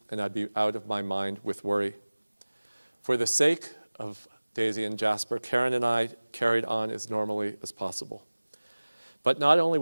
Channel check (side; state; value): both; inverted; correlation -1.00